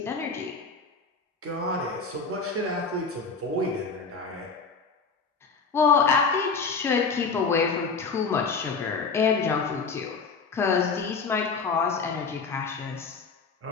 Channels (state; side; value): quieter; right; 4.8 dB